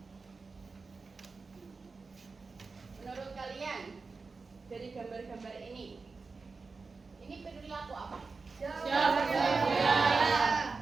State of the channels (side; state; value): left; quieter; 4.3 dB